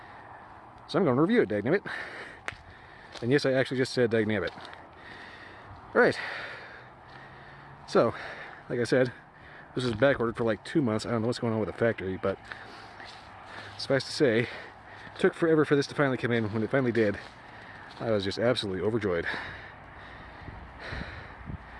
So I'm going to review it, dagnabbit. And yes, I actually just said dagnabbit. Alright. So, like I said, this was back ordered for like 2 months. I don't know what's going on with the factory, but suffice to say, it took forever for this to finally come in. When it finally did, I was just absolutely overjoyed.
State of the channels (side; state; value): both; identical; correlation 1.00